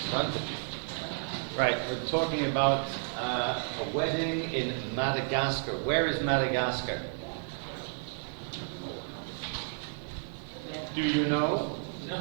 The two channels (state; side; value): silent; left; 57 dB below the other